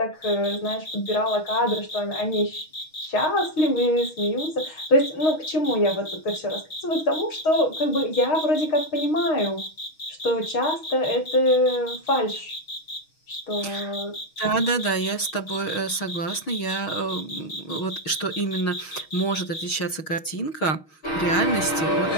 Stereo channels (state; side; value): late; right; 6.3 ms